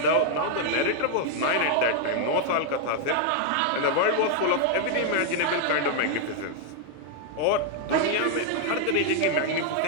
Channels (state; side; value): different; both; correlation 0.00